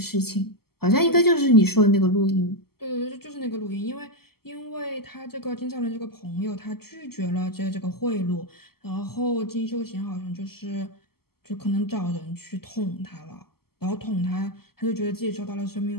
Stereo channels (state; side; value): late; right; 0.95 ms